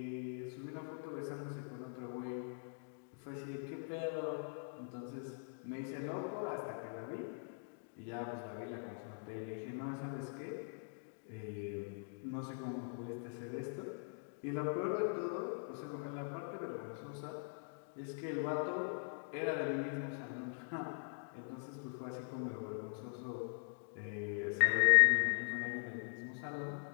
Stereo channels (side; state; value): right; silent; digital silence